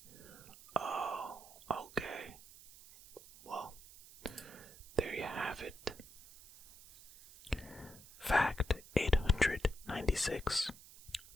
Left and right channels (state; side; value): noise; right; hiss, 19 dB below the sound